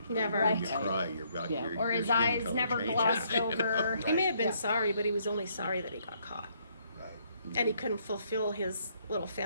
Never. When you Right. cry, your, Yeah. your, Or your his skin eyes color never changes, glossed you know? over. He may have been Yeah. sorry, but he was only sorry that he got caught. And he couldn't fulfill his little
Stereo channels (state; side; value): inverted; both; correlation -0.69